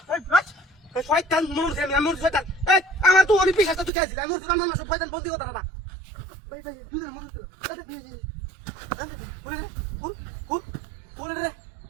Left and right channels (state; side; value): drops out; left; at 3.9 s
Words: এই শয়তান মনুষ আমি শয়তান এই আমার তো অনেক বিশ্বাস তুই গেছিস আমি শয়তান মানুষ শয়তান বন্দি কথা না ভাই দুজন মত দিল আরে ফুল রে